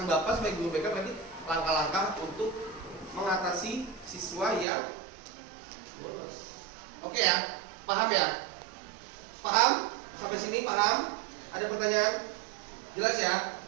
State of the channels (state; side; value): drops out; left; at 4.7 s